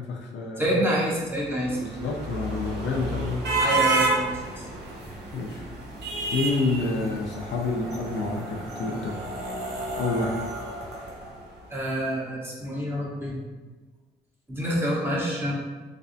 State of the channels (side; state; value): both; normal; correlation 0.44